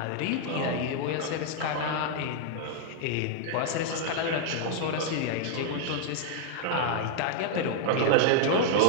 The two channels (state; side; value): different; both; correlation 0.00